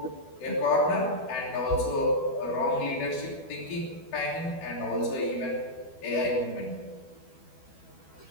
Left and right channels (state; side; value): late; right; 12 ms